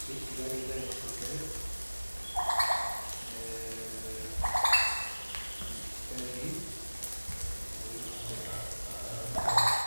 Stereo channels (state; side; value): inverted; both; correlation -1.00